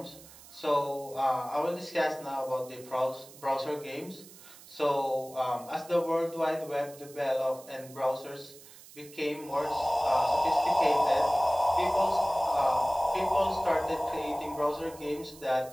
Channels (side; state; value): right; noise; hiss, 20 dB below the sound